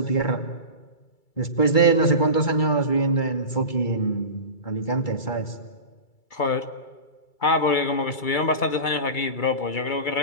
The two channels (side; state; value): right; late; 2.3 ms